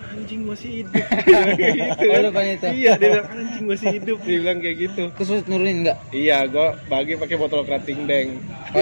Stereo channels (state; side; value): inverted; both; correlation -1.00